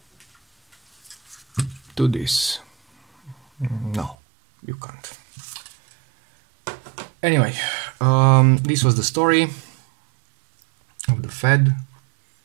to this. No, you can't. Anyway, this was the story of the Fed.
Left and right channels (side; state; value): left; drops out; at 4.2 s